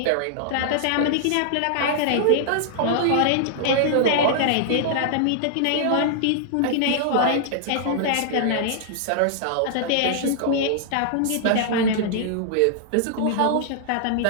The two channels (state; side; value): different; both; correlation -0.01